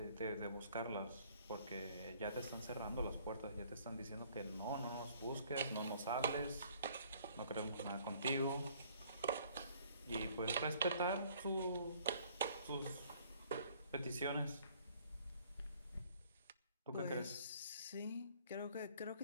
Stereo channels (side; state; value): both; inverted; correlation -0.59